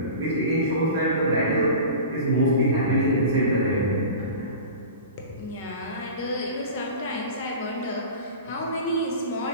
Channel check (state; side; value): inverted; both; correlation -0.34